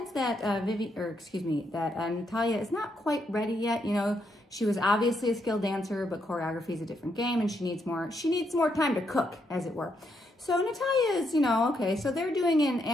that Natalia is not quite ready yet. You know, she was obviously a skilled dancer, but choreography is a different game, and she needs more time to cook, as it were. So Natalia is, you know, okay, so they're doing an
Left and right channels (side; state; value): both; normal; correlation 0.78